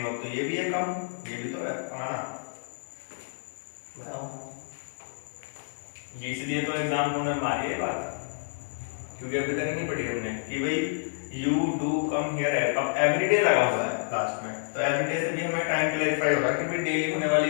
वर्ब तो ये भी है कम, ये भी तो है आना, बताओ। ये इसलिए तो एग्जाम कॉर्नर में आ रही है बात, क्योंकि अभी तक नहीं पढ़ी हमने कि भाई यू डू कम हियर है, अब एवरीडे लगा हुआ है लास्ट में, तो एवरीडे से भी हमें टाइम क्लैरिफाई हो रहा है कि भाई डेली होने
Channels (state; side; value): silent; right; digital silence